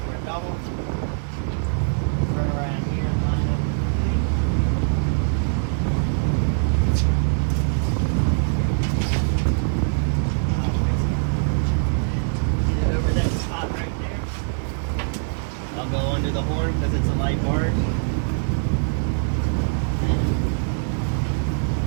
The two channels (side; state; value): left; silent; digital silence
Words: a double. Turn around here and line up with the fleet. Get over that spot right there. I'll go under the horn because it's a light barge.